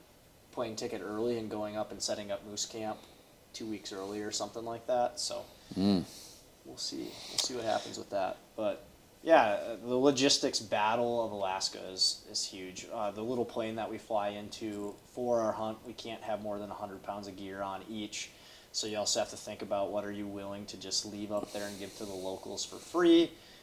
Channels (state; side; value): identical; both; correlation 1.00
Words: plane ticket early and going up and setting up moose camp 2 weeks early or something like that. So we'll see. We'll see what happens with that. But yeah, the logistics battle of Alaska is huge. The little plane that we fly into for our hunt, we can't have more than 100 pounds of gear on each. So you also have to think about what are you willing to just leave up there and give to the locals for free.